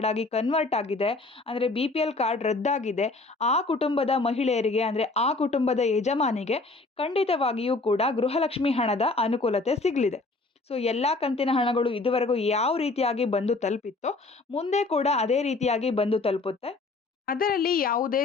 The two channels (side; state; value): right; quieter; 3.5 dB